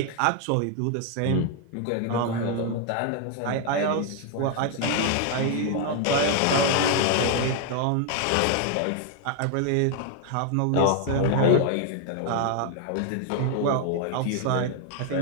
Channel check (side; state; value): both; different; correlation 0.00